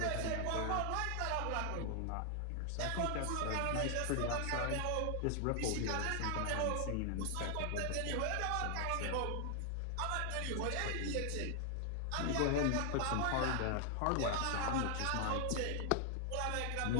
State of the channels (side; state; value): both; different; correlation 0.00